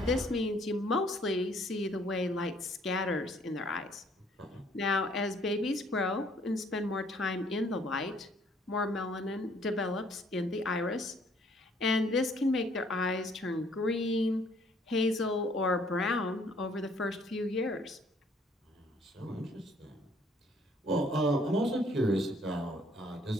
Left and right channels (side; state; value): both; normal; correlation 0.62